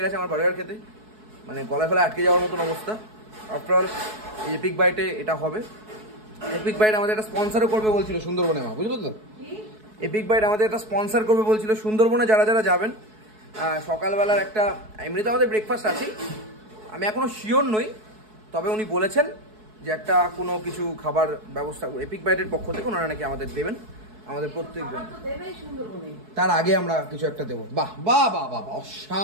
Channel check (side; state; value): left; late; 4.7 ms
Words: গেছে আমার বার্গার খেতে, মানে গলায় ফলে আটকে যাওয়ার মতন অবস্থা। আফটার অল এপিক বাইটে এটা হবে। এপিক বাইট আমাদের একটা স্পন্সারও করবে বলছিল সুন্দরবনে, মা বুঝলো তো? এপিক বাইট আমাদের একটা স্পন্সার করবে বলছিল সুন্দরবনে। যারা যাবেন সকালবেলার একটা, এমনিতে আমাদের ব্রেকফাস্ট আছেই, আমি এখনো শিওর নই, তবে উনি বলেছেন যে একটা কোনো কিছু খাবার ব্যবস্থা এপিক বাইটের পক্ষ থেকে ওনারা নাকি আমাদের দেবেন, আমাদের প্রত্যেকজন। তার আগে আমরা কিছু একটা দেবো। বাহ,